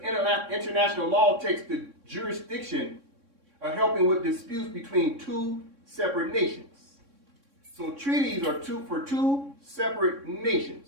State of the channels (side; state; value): left; late; 3.6 ms